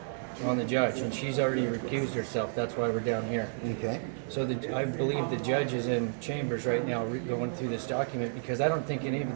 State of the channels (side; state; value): left; silent; digital silence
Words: on the judge, and she's already recused herself. That's why we're down here. Okay. So I believe the judge is in chambers right now going through this document, because I don't think any of